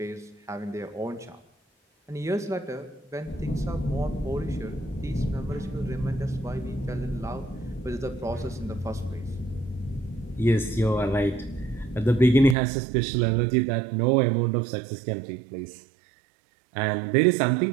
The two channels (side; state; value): left; drops out; at 12.6 s